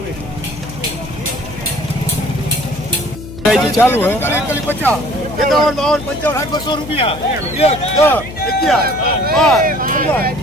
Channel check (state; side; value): noise; left; hum, 13 dB below the sound